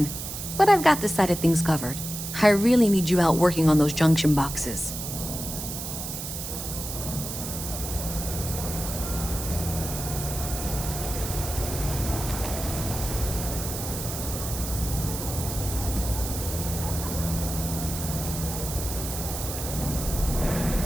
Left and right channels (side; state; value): right; noise; hiss, 6 dB below the sound